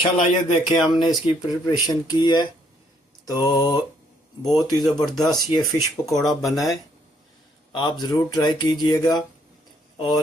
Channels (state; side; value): normal; both; correlation 0.68